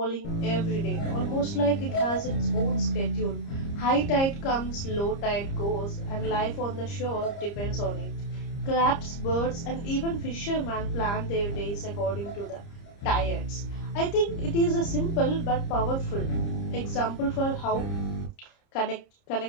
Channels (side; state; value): right; late; 30 ms